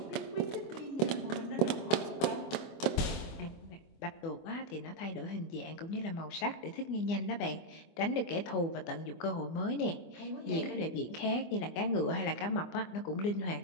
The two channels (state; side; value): late; right; 24 ms